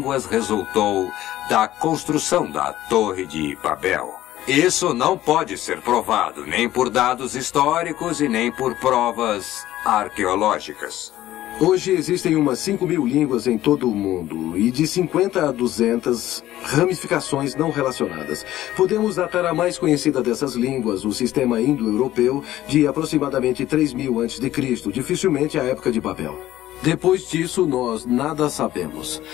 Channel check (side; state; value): right; quieter; 14.3 dB